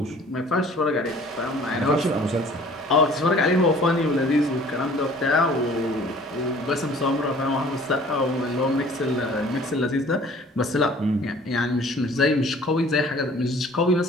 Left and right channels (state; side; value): normal; both; correlation 0.51